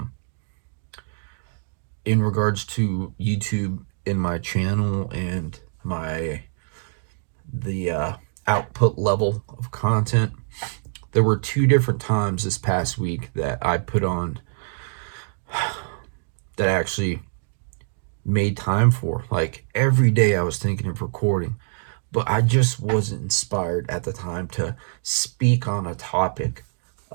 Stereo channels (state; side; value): silent; left; digital silence